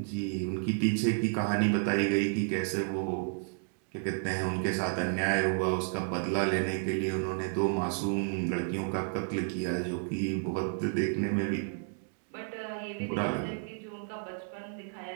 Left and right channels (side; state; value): left; silent; 57 dB below the other